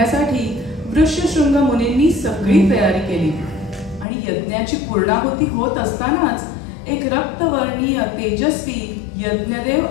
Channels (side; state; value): right; drops out; at 4.0 s